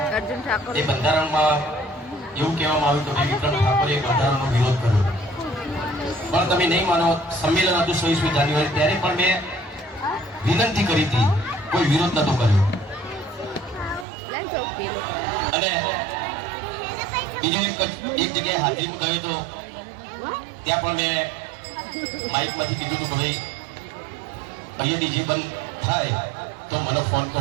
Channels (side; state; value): left; drops out; at 14.1 s